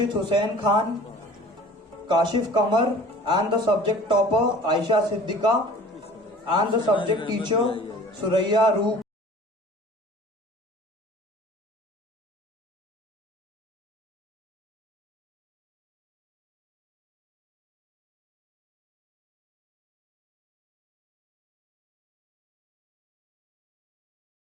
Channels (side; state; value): both; normal; correlation 0.46